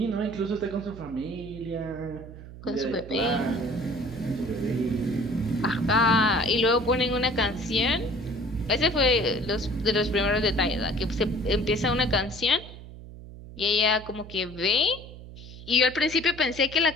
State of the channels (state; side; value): noise; right; hum, 15 dB below the sound